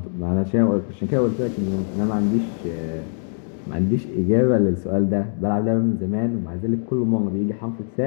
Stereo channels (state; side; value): silent; right; digital silence